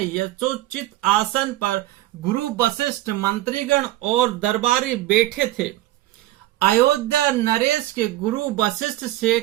यथोचित आसन पर गुरु वशिष्ठ, मंत्रीगण और दरबारी बैठे थे। अयोध्या नरेश के गुरु वशिष्ठ से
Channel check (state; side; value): quieter; left; 15.7 dB